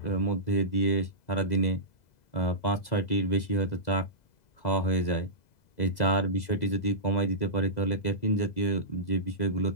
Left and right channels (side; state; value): right; late; 2.0 ms